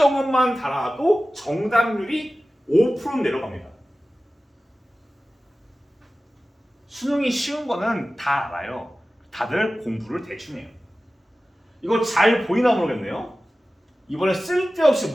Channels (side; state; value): both; normal; correlation 0.96